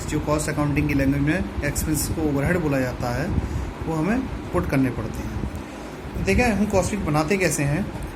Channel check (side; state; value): both; identical; correlation 1.00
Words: जो कॉस्ट अकाउंटिंग की लैंग्वेज में एक्सपेंसेस को ओवरहेड बोला जाता है, वो हमें पुट करने पड़ते हैं। देखें हम कॉस्ट शीट बनाते कैसे हैं।